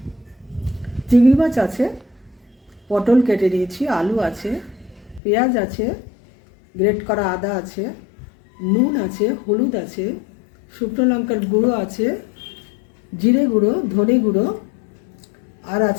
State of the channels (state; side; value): drops out; right; at 5.2 s